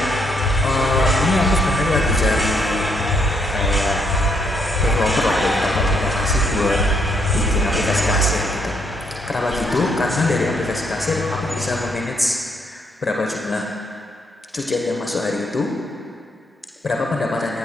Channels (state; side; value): normal; both; correlation 0.73